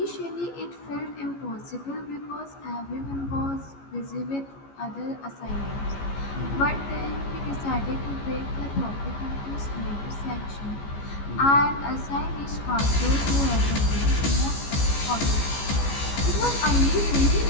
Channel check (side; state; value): right; late; 14 ms